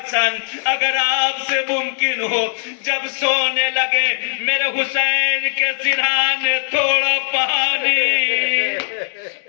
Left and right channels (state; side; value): silent; right; 61 dB below the other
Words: अगर आपसे मुमकिन हो जब सोने लगे मेरे हुसैन के सिरहाने थोड़ा पानी।